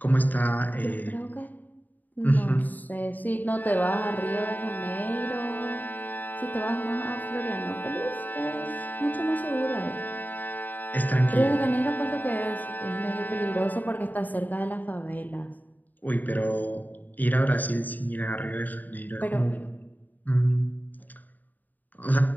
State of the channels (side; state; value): right; late; 0.084 ms